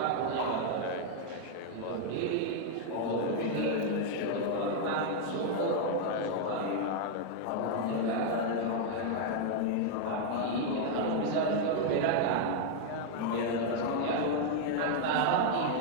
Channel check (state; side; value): different; both; correlation 0.00